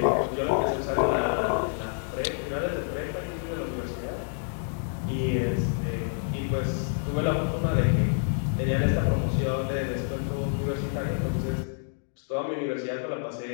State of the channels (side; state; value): right; silent; digital silence